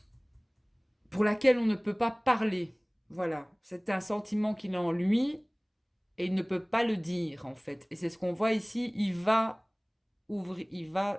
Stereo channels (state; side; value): identical; both; correlation 1.00